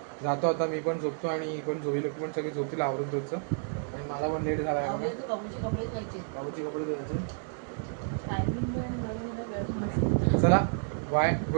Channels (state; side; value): silent; left; digital silence